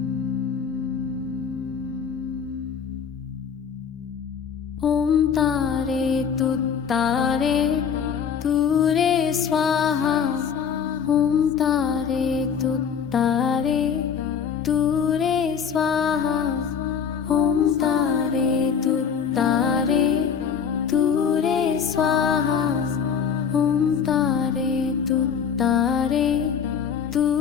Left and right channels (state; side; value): quieter; right; 7.1 dB